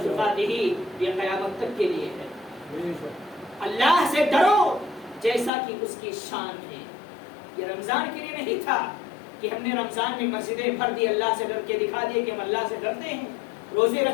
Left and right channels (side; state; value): right; drops out; at 5.5 s